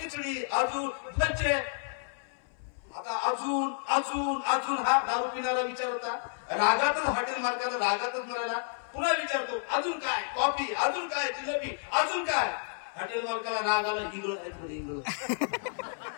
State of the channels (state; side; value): silent; right; 57 dB below the other